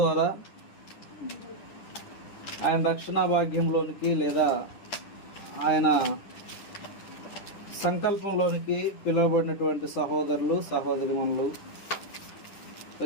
ఆయన రక్షణ భాగ్యంలోనికి లేదా ఆయన సంకల్పంలోనికి పిలువబడినటువంటి సహోదరులు సహోదరిమణులు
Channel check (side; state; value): right; late; 10 ms